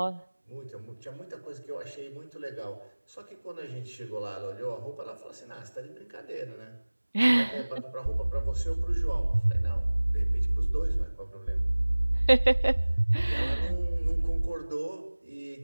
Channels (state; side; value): inverted; both; correlation -1.00